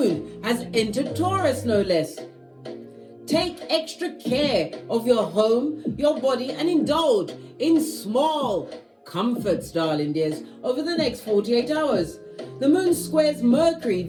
has entered Taurus, no less. Take extra care of your home, your body, and indulge in small comforts, darling dears, over the next 48 hours. The moon squares Mercury,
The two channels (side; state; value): both; identical; correlation 1.00